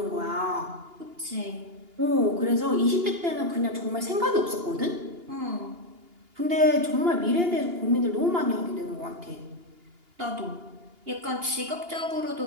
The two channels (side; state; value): left; late; 2.8 ms